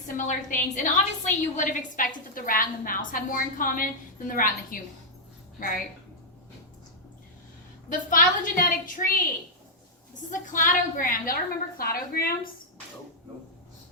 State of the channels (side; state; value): both; normal; correlation -0.06